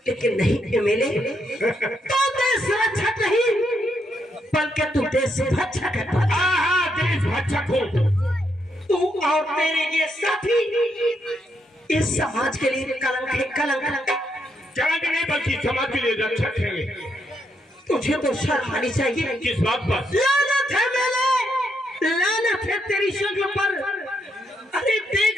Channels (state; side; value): normal; both; correlation 0.78